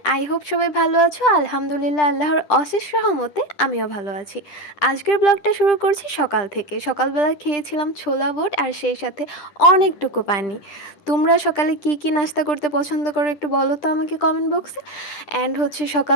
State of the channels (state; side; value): late; right; 10 ms